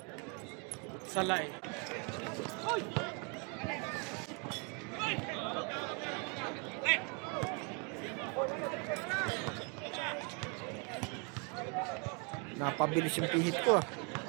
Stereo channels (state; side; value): quieter; left; 33.0 dB